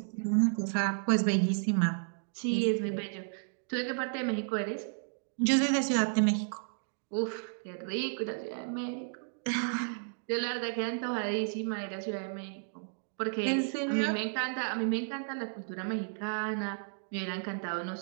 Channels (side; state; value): left; silent; digital silence